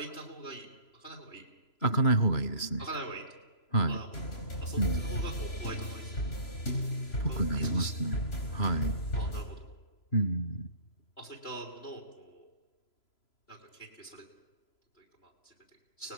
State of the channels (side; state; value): right; late; 3.0 ms